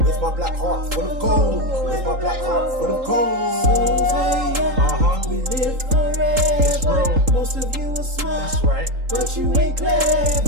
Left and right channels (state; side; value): late; left; 3.8 ms